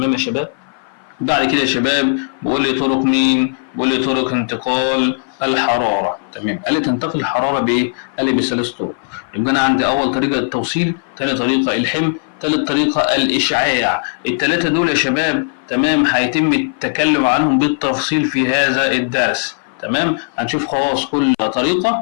يا شباب؟ بعد كده يا شباب بقول لي طرق مين؟ بقول لي طرق انتقال الحرارة. تمام. قال لي تنتقل الحرارة بإيه؟ قال لي بثلاث طرق. يبقى أنا عندي أول طريقة التوصيل، ثاني طريقة الحمل، ثالث طريقة الإشعاع. الثلاثة دول يا شباب تمام هيتم التكلم عنهم بالتفصيل في هذا الدرس. تمام. هنشوف خلاص كل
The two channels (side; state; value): right; silent; 57 dB below the other